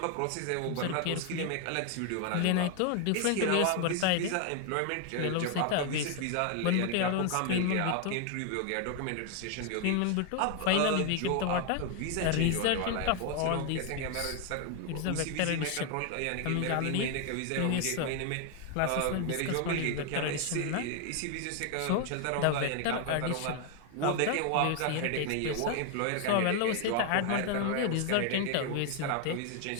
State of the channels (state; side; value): different; both; correlation 0.01